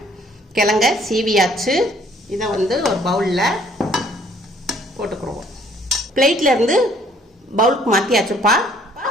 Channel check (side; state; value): both; normal; correlation 0.61